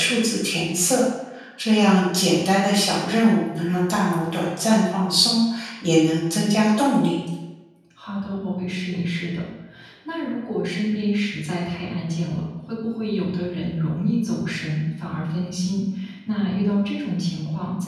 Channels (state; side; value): identical; both; correlation 1.00